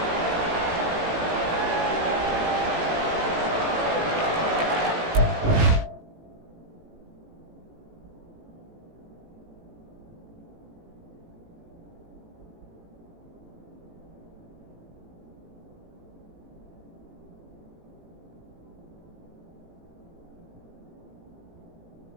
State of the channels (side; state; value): left; late; 18 ms